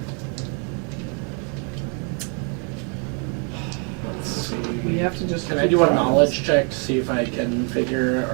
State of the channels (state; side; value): quieter; left; 38.2 dB